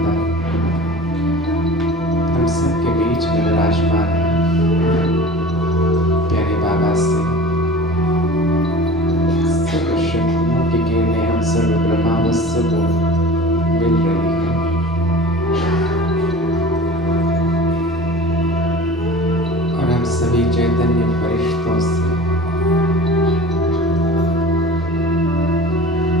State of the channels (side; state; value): both; normal; correlation 0.39